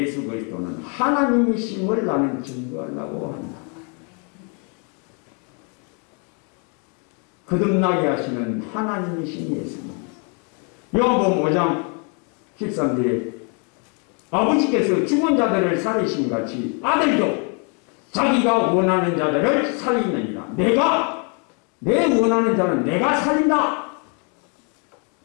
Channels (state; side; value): quieter; right; 37.0 dB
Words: 그리스도는 하나님이심을 나는 증거하려고 한다. 거듭나게 하시는 하나님이신 예수님. 요한복음 5장 13절에 아버지께서 죽은 자들을 살리신 같이 아들도 자기가 원하는 자들을 살리느니라. 내 원하는 자는 내가 살린다.